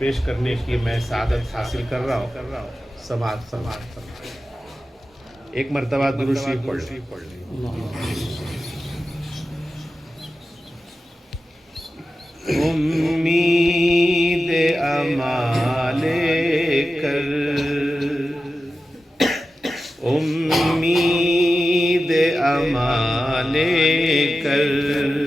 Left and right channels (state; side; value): normal; both; correlation 0.93